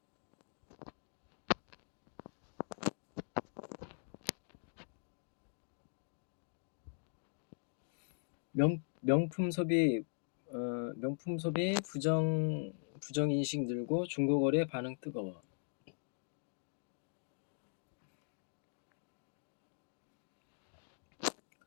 명품 소비 부정 인식 늘고 중고거래 반응 뜨거워.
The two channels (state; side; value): silent; right; digital silence